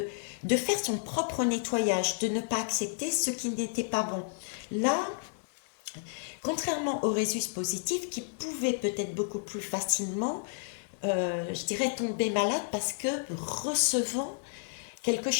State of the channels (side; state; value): right; silent; digital silence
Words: faire son propre nettoyage, de ne pas accepter ce qui n'était pas bon. Là, contrairement au Rhésus positif, qui pouvait peut-être beaucoup plus facilement, je dirais, tomber malade parce que recevant quelque